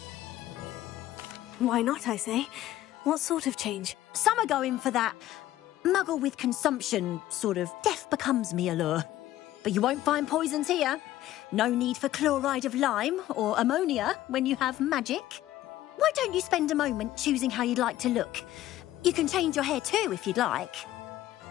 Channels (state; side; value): quieter; right; 14.3 dB